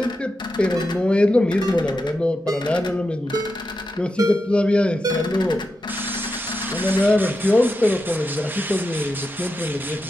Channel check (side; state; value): both; normal; correlation 0.88